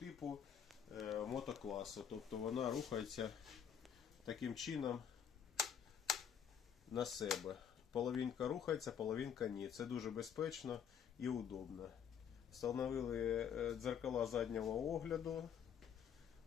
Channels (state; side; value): quieter; right; 8.2 dB